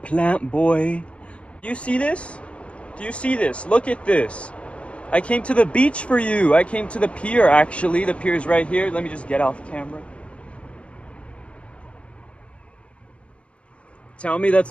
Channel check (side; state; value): right; late; 0.061 ms